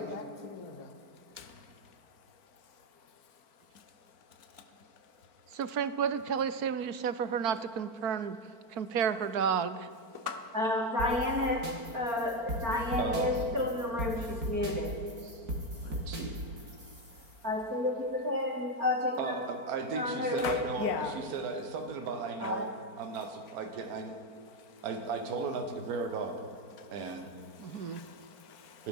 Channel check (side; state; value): left; late; 4.4 ms